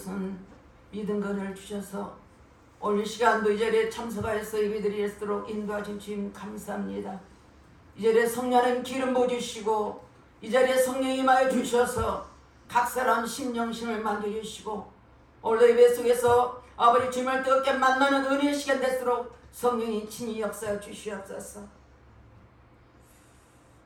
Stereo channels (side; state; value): both; identical; correlation 1.00